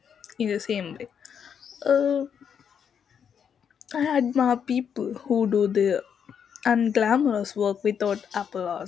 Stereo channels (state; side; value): quieter; right; 7.6 dB